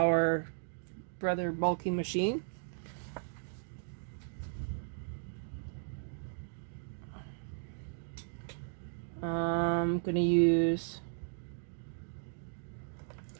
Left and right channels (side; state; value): left; silent; digital silence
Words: Brother bulky machine. I'm going to use